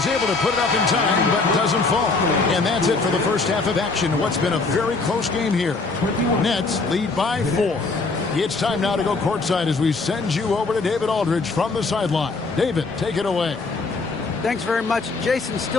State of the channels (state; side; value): quieter; right; 3.9 dB